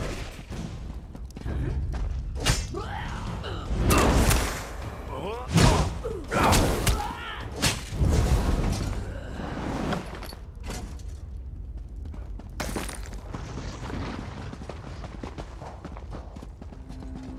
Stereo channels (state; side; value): identical; both; correlation 1.00